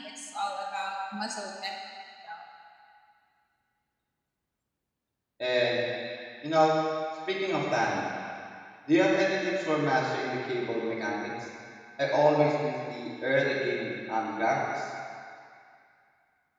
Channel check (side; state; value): both; identical; correlation 1.00